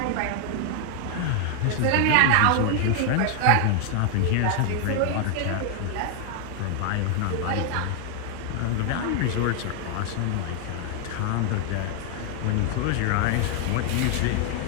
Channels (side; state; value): both; different; correlation 0.00